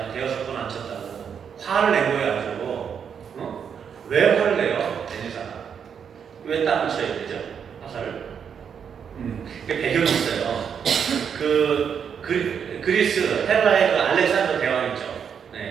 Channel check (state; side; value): quieter; left; 7.4 dB